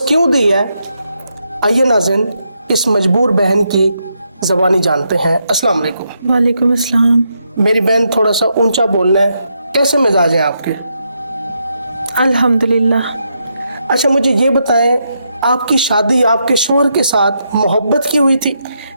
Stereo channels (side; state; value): both; inverted; correlation -0.81